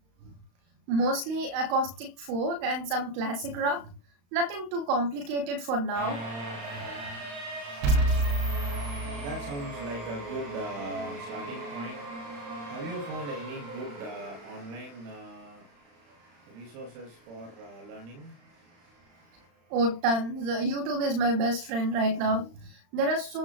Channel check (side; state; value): left; late; 35 ms